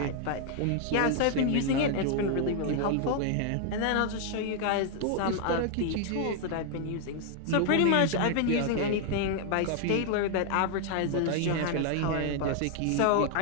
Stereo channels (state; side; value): different; both; correlation 0.00